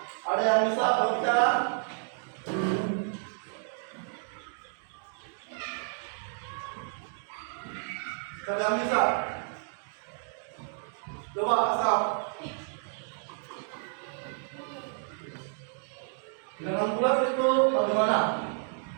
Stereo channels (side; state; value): left; silent; 57 dB below the other